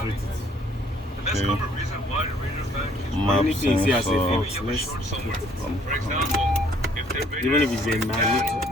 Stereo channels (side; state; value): both; normal; correlation 0.61